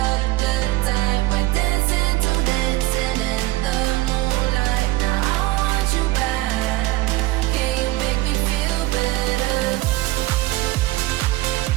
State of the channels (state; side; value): quieter; left; 18.2 dB